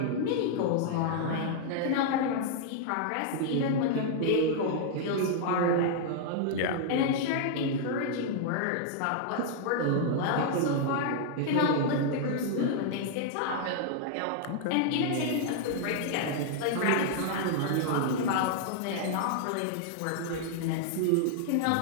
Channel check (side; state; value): both; different; correlation -0.01